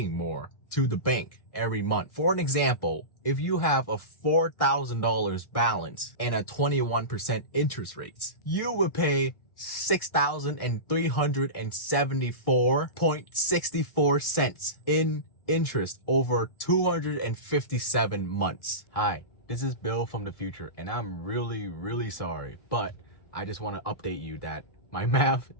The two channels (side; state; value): right; late; 1.6 ms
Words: more to the bank every month. For an example, if you have a $4,000 balance and a 21% interest rates, you will pay $6,374.64 in interest over 257 months. Hi, this is Bill from the future, and I'm really sorry, but I just want to update you that my math